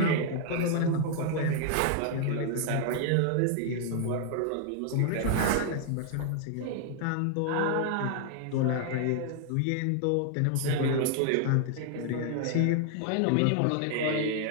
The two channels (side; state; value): both; different; correlation 0.00